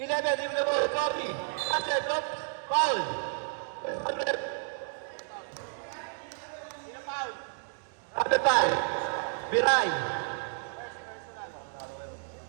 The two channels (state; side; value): silent; left; digital silence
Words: leave the ball, copy. Pass it, up, foul. Number 5, Biray.